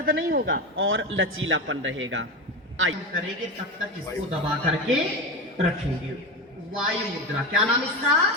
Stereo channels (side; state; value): both; normal; correlation 0.21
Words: नहीं होगा और लचीलापन रहेगा। आइए करेंगे तब तक इसको दबा करके रखेंगे। वायु मुद्रा, क्या नाम इसका?